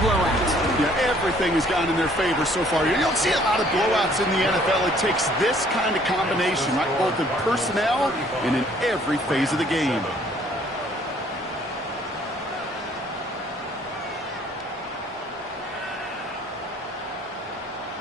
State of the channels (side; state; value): both; normal; correlation 0.60